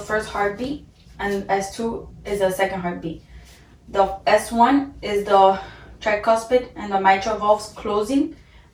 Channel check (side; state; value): both; identical; correlation 1.00